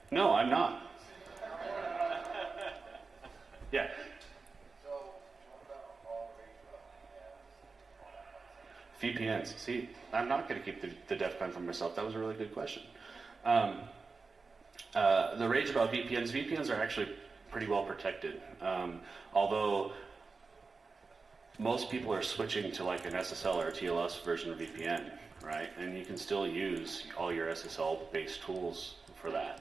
No, I'm not. Yeah. VPNs. See, I'm not going to keep the DEF CON for myself. That was a really good question. The rage about VPNs are actually pretty well protected. Although most people are switching to like an SSL or a TLS version of VPN, right? And you can still use all your SSL-based tools for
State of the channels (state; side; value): quieter; left; 4.3 dB